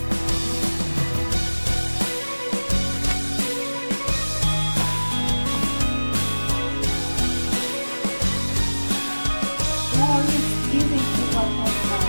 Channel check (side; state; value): both; inverted; correlation -1.00